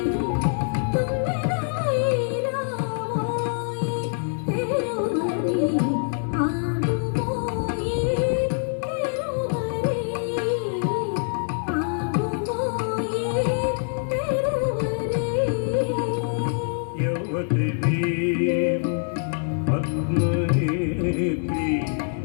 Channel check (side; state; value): right; silent; 62 dB below the other